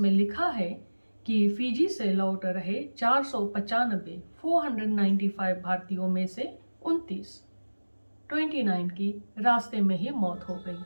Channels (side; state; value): both; inverted; correlation -1.00